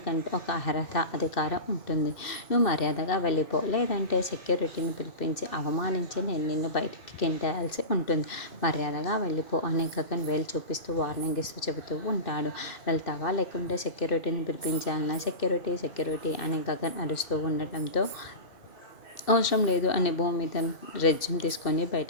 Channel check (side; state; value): right; late; 2.6 ms